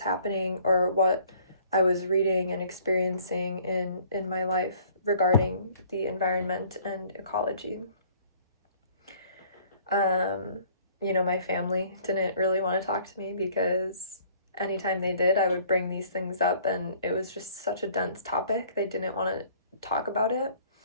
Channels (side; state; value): both; inverted; correlation -0.57